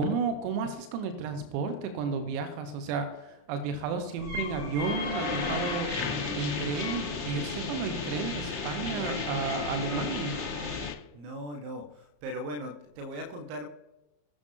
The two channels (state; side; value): late; left; 34 ms